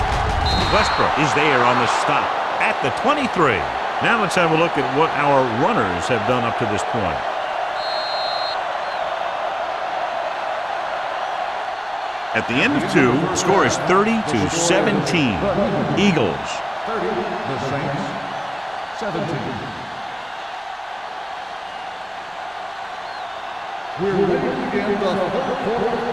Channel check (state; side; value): identical; both; correlation 1.00